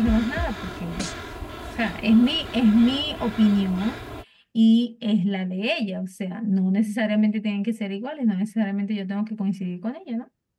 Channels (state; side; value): identical; both; correlation 1.00